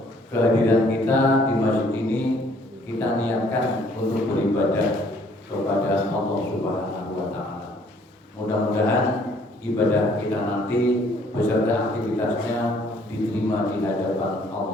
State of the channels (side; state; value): both; normal; correlation 0.61